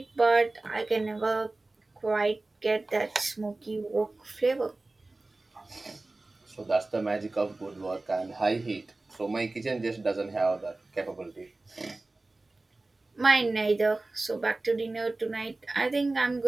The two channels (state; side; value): quieter; left; 3.1 dB